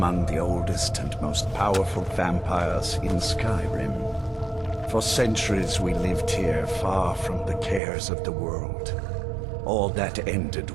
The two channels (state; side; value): drops out; left; at 7.8 s